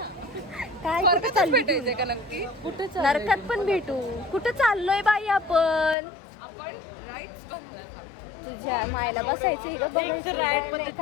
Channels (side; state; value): right; drops out; at 6.0 s